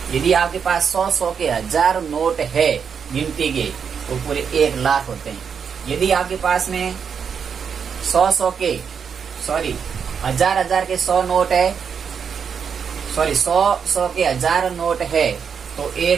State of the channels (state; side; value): quieter; left; 6.8 dB